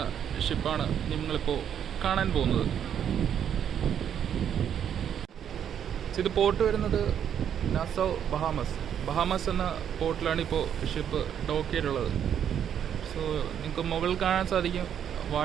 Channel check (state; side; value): quieter; left; 9.0 dB